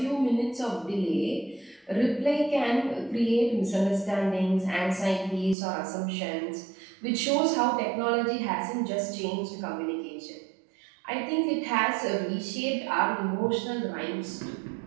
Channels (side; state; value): left; drops out; at 5.6 s